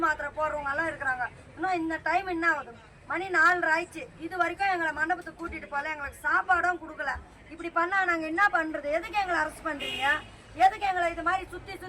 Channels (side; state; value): both; identical; correlation 1.00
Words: மாத்திரை போடுறவங்க எல்லாம் இருக்கிறாங்க. இன்னும் இந்த டைம் என்ன ஆகுது? மணி 4 ஆயிடுச்சு. இது வரைக்கும் எங்களை மண்டபத்துக்கு கூட்டிட்டு போகல, எங்களுக்கு சாப்பாடும் கொடுக்கல. இப்படி பண்ணா நாங்கள் என்ன பண்றது? எதுக்கு எங்களை அரெஸ்ட் பண்றீங்க? எதுக்கு எங்களை இது மாதிரி சுத்தி